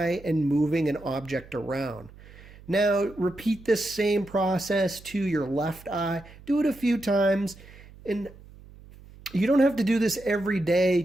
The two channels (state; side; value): noise; right; hum, 21 dB below the sound